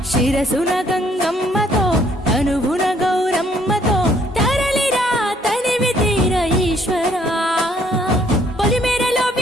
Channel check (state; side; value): normal; both; correlation 0.65